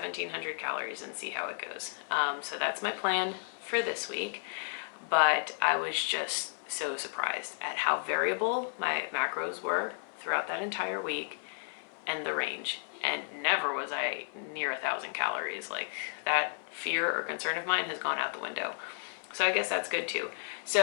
calories and see how it goes. So that's my plan for this week. But I was just so surprised at how variable my macros were throughout that entire week and the range. And never was I near 1,000 calories. Like, that fear or concern of mine has gone out the window. So I guess that's good too.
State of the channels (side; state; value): right; silent; 56 dB below the other